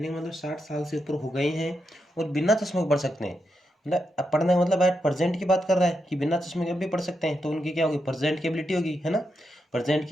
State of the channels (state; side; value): normal; both; correlation 0.84